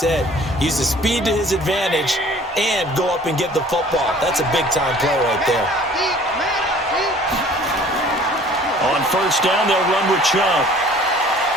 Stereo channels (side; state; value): both; normal; correlation 0.51